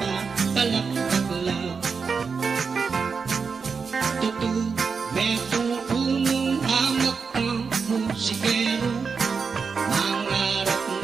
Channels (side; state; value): left; quieter; 5.3 dB